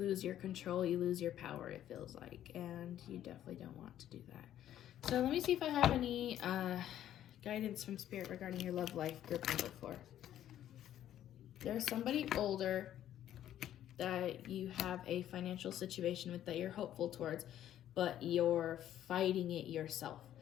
your control, you lose your power, it feels like, and you definitely don't want to do that. So let me see if I have any guidance from Spirit regarding your love life, group number 4. There's somebody older that you have a financial situation with that you're hopeful towards, but you're fighting it yourself.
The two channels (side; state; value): right; quieter; 11.6 dB